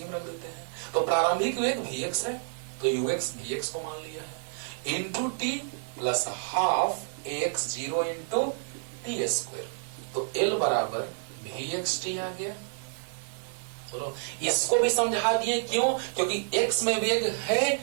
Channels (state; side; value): silent; left; digital silence